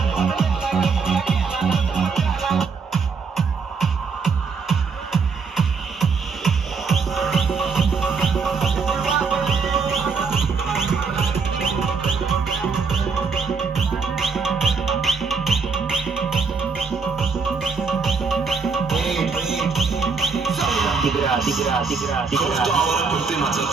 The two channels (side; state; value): left; quieter; 5.0 dB